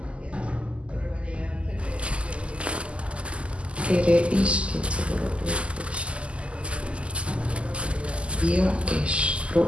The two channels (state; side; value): late; left; 0.055 ms